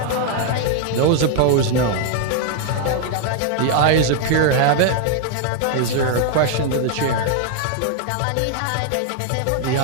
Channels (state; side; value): different; both; correlation 0.00